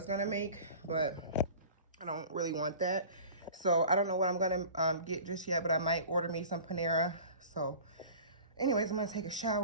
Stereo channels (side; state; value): both; inverted; correlation -0.41